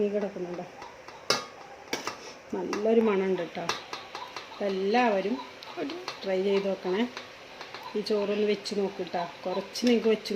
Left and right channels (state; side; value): identical; both; correlation 1.00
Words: കിടക്കുന്നുണ്ടോ. നല്ലൊരു മണമുണ്ട് കേട്ടോ. എല്ലാവരും ട്രൈ ചെയ്ത് നോക്കണേ. ഈ ചോറൊന്ന് വെച്ച് നോക്കിട്ടാ. കുറച്ച് നിങ്ങൾക്ക് വെച്ച്